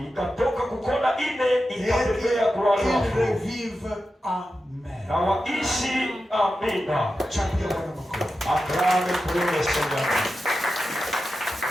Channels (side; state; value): both; normal; correlation 0.91